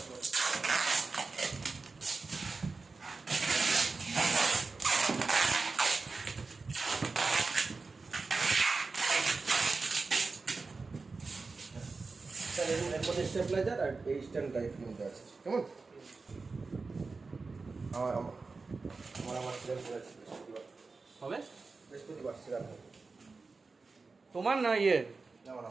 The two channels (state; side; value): quieter; left; 4.1 dB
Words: স্টেবলাইজার আর এই স্ট্যান্ড টাইপ মধ্যে আছে, কেমন? আমার আমার আমার সিরিয়াল করেছি হবে বৃহস্পতিবার সিরিয়াল তোমার না ইয়ে? আমার